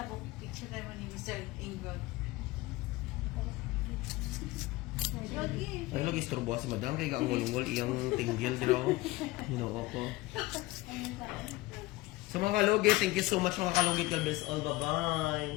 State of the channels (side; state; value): right; quieter; 19.7 dB